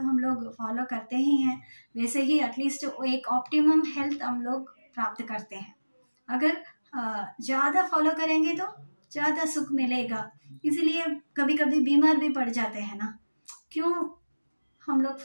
लोग फॉलो करते ही हैं। वैसे ही एटलीस्ट एक ऑप्टिमम हेल्थ हम लोग प्राप्त करते हैं। अगर ज़्यादा फॉलो करेंगे तो ज़्यादा सुख मिलेगा, इसलिए कभी कभी बीमार भी पड़ जाते हैं ना, क्यों हम लोग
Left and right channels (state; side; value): inverted; both; correlation -1.00